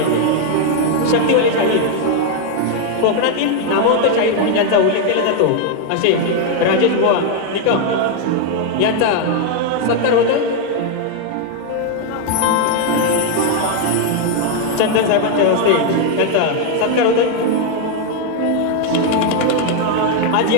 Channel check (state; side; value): different; both; correlation 0.01